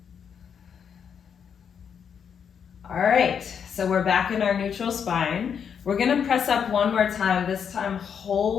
All right, so we're back in our neutral spine. We're gonna press up one more time. This time,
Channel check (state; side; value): quieter; right; 7.4 dB